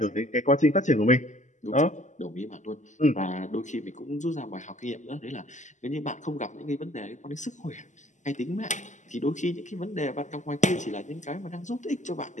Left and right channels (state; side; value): late; right; 0.35 ms